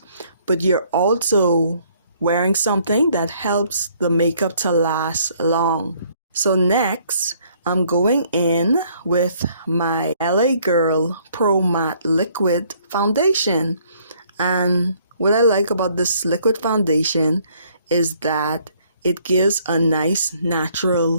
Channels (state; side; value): inverted; both; correlation -0.64